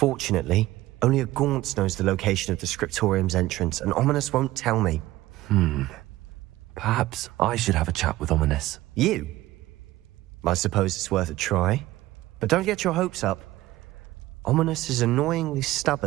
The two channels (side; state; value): left; quieter; 16.7 dB